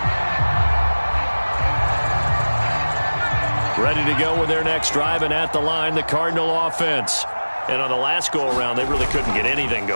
Ready to go with their next drive, and at the line, the Cardinal offense. And on the last go-around, they really couldn't get anything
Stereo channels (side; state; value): both; inverted; correlation -1.00